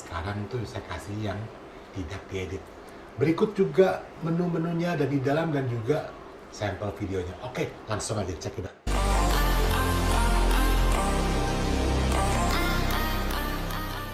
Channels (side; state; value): both; identical; correlation 1.00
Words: tuh saya kasih yang tidak diedit. Berikut juga menu-menunya ada di dalam dan juga sampel videonya. Oke, langsung aja cek it out.